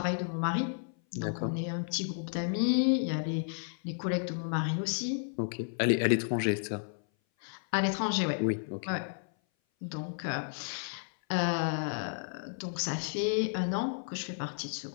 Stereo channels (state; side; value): silent; right; 56 dB below the other